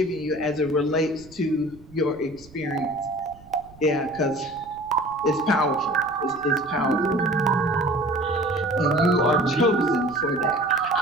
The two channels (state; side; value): noise; right; rumble, 23 dB below the sound